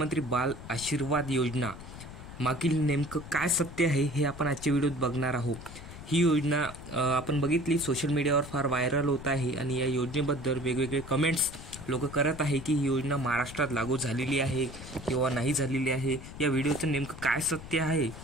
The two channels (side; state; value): left; noise; rumble, 14 dB below the sound